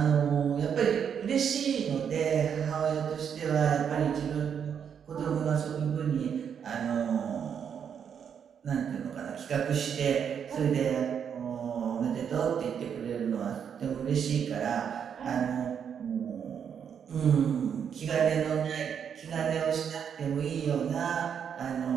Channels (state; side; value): quieter; left; 7.7 dB